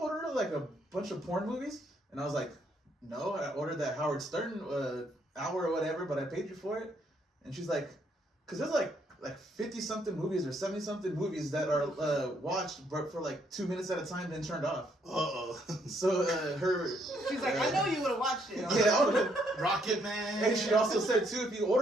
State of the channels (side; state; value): both; normal; correlation 0.71